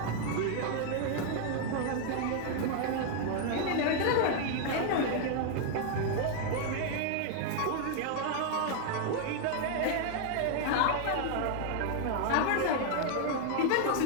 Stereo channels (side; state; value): both; different; correlation 0.00